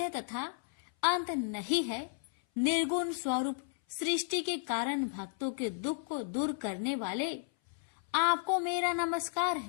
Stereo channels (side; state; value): right; silent; 56 dB below the other